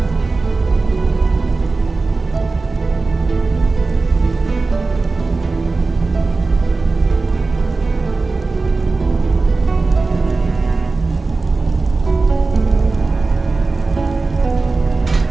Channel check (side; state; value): left; quieter; 3.7 dB